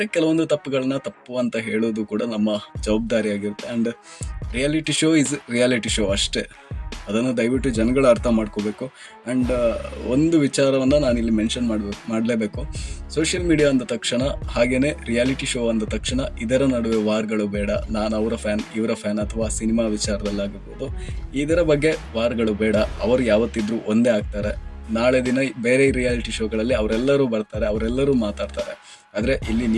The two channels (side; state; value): both; identical; correlation 1.00